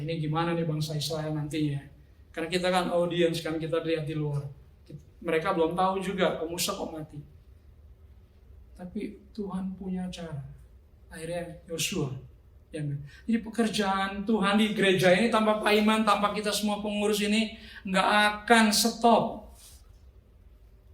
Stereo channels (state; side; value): identical; both; correlation 1.00